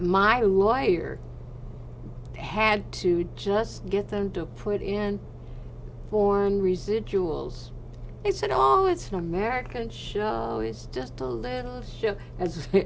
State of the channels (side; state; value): both; identical; correlation 1.00